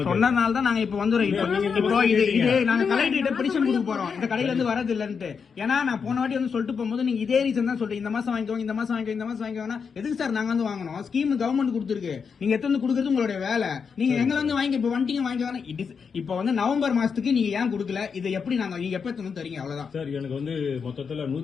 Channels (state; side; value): quieter; right; 6.0 dB